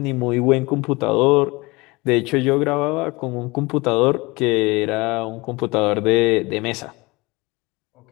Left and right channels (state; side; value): quieter; right; 24.2 dB